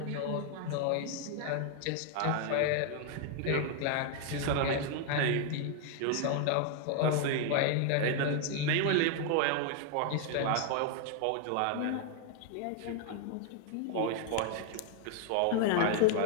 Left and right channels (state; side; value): different; both; correlation 0.00